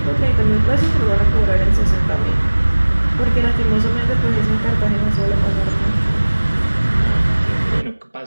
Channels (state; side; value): inverted; both; correlation -1.00